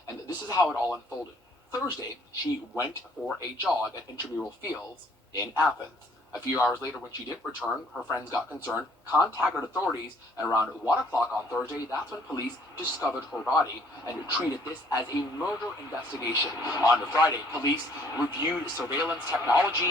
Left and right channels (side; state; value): both; normal; correlation 0.60